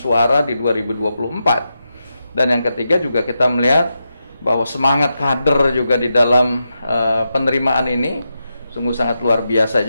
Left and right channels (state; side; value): inverted; both; correlation -0.87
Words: di 2024. Dan yang ketiga juga kita melihat bahwa semangat kader juga di dalam penerimaan ini sungguh sangat luar biasa